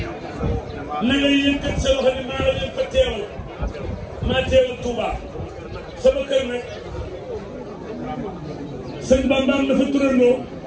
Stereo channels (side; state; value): both; identical; correlation 1.00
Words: na nga yëkkat sa loxo ni maa la leen fa teewal maa teewal Touba sama kër nag sëñ Bambaam dafa turandoo